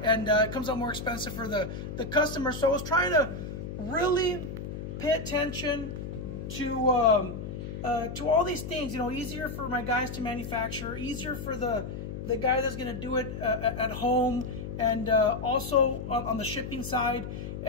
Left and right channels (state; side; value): noise; left; hum, 7 dB below the sound